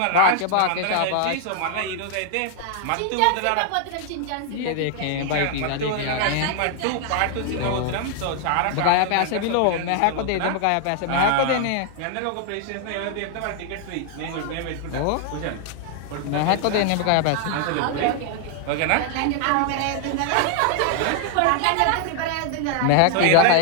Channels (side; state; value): both; different; correlation 0.00